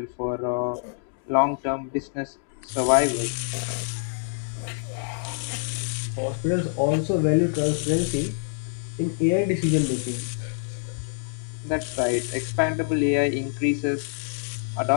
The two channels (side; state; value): right; silent; digital silence